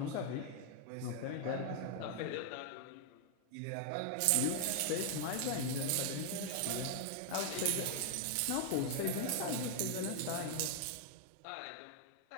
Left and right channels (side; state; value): both; different; correlation 0.00